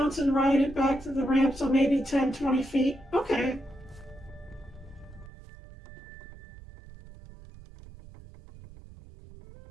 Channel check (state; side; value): drops out; left; at 5.3 s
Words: and ride it back to the ramp, so maybe 10, 20 feet. Okay.